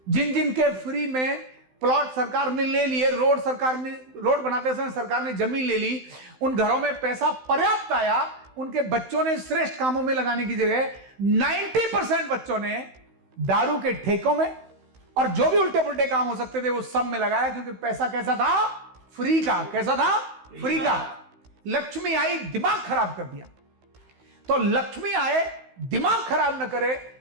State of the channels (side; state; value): left; late; 16 ms